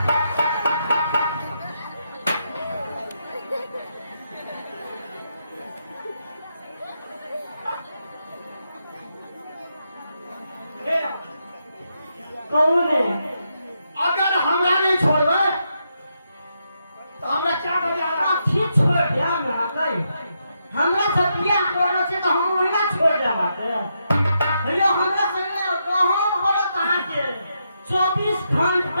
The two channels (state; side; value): inverted; both; correlation -0.82